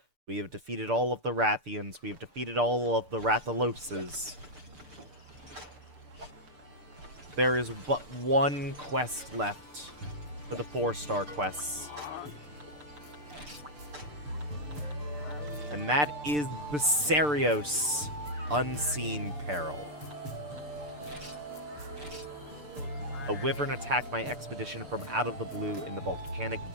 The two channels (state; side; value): late; left; 6.8 ms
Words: We have defeated all of the Rathians. We have defeated all of the Rathaloses. There is but one quest left for the 4-star quests. And that is Bessarios, Unseen Peril. A wyvern attacked my expedition from out of the blue in the Volcanic